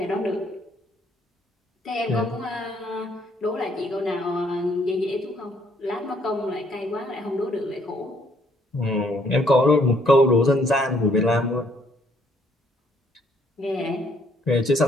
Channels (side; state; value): both; normal; correlation 0.66